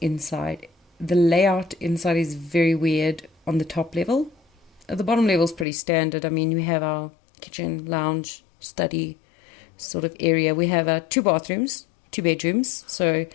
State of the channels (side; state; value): right; drops out; at 5.7 s